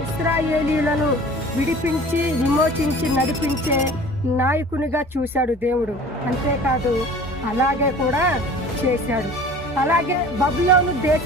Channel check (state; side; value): normal; both; correlation 0.44